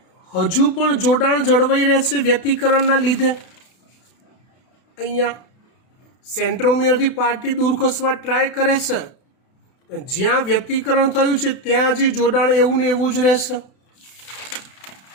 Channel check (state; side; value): late; right; 32 ms